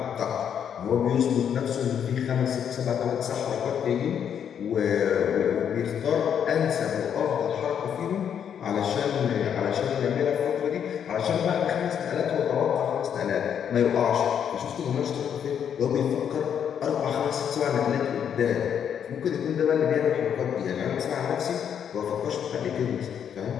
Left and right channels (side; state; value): right; quieter; 8.4 dB